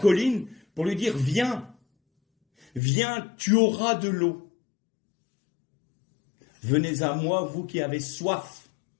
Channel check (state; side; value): drops out; right; at 2.8 s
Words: pour lui dire, viens, viens, tu auras de l'eau. Venez à moi, vous qui avez soif,